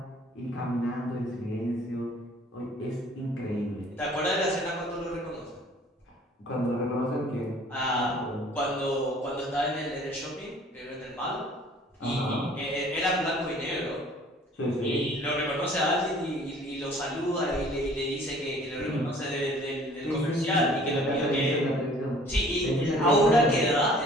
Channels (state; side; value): normal; both; correlation 0.53